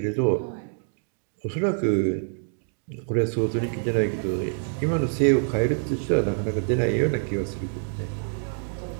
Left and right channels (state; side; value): silent; left; 61 dB below the other